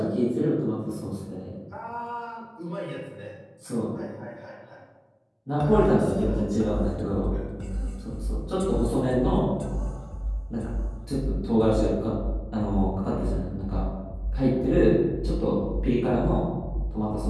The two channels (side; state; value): both; identical; correlation 1.00